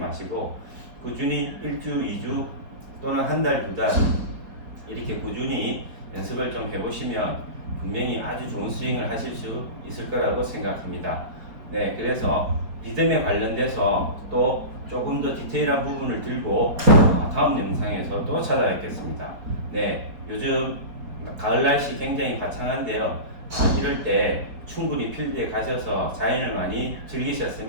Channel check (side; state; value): left; late; 4.8 ms